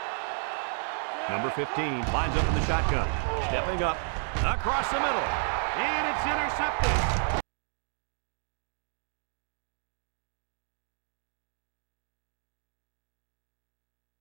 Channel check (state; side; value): silent; left; 57 dB below the other